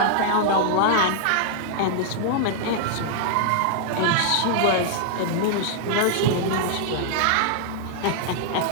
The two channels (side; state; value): both; different; correlation -0.01